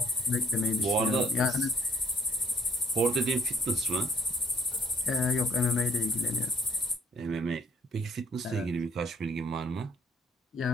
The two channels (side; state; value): both; normal; correlation 0.61